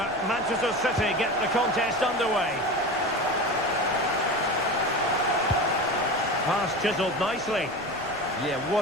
Manchester City get the contest underway. Pass chiselled nicely. Yeah,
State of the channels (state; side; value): noise; left; rumble, 21 dB below the sound